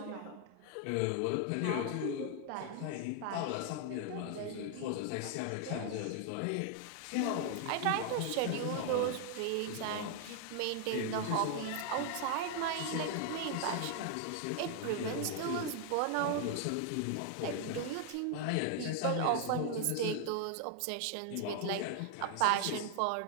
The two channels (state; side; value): different; both; correlation 0.00